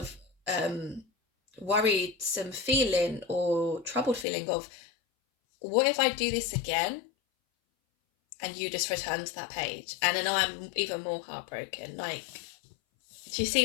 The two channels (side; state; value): right; drops out; at 4.2 s